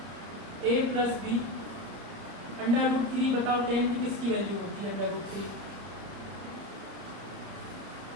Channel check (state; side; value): late; left; 30 ms